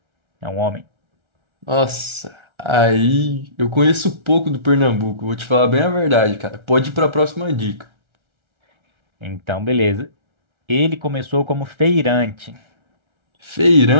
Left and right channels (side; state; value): left; late; 1.3 ms